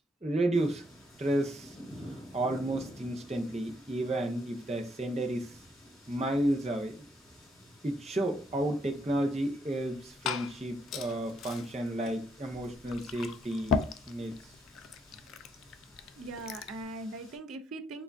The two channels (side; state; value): both; normal; correlation 0.75